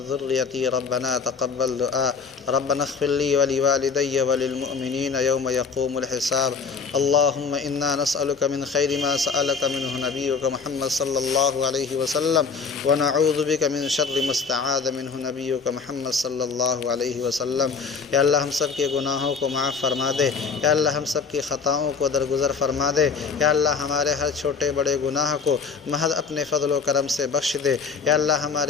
ذريتي ربنا تقبل دعاء۔ ربنا اغفر لي ولوالدي وللمؤمنين يوم يقوم الحساب۔ اللهم إنا نسألك من خير ما سألك منه نبيك محمد صلى الله عليه وسلم، ونعوذ بك من شر ما استعاذ منه نبيك محمد صلی اللہ علیہ وسلم۔ یا اللہ ہم سب کے گناہوں کو معاف فرما دے، یا اللہ ہم سب کی خطاؤں کو درگزر فرما دے، یا اللہ ہمارے ہر چھوٹے بڑے گناہ کو محض اپنے فضل و کرم سے بخش دے، یا اللہ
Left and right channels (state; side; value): quieter; right; 5.3 dB